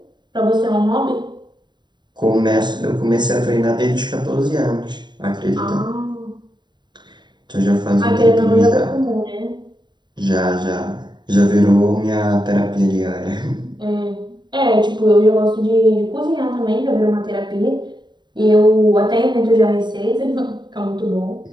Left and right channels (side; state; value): left; late; 0.22 ms